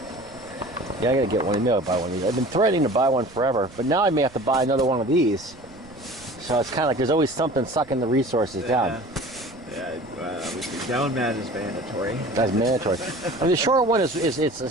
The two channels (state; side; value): noise; right; rumble, 23 dB below the sound